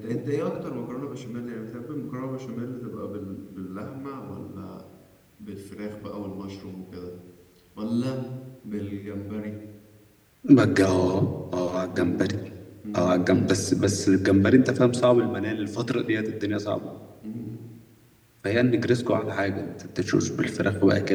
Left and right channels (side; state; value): both; identical; correlation 1.00